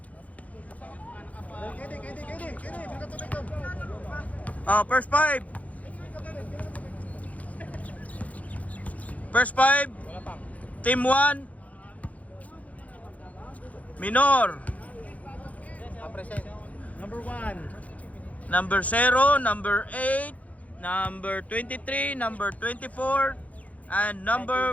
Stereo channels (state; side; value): late; right; 0.070 ms